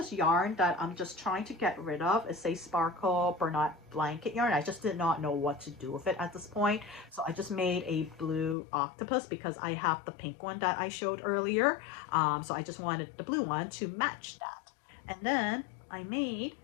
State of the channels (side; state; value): right; drops out; at 8.6 s